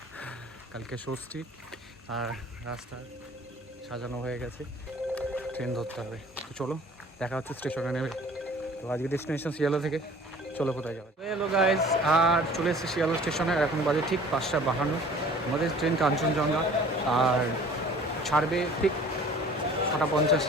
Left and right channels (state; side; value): normal; both; correlation 0.49